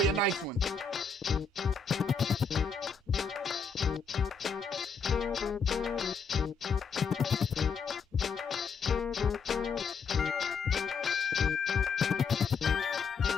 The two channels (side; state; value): right; quieter; 5.2 dB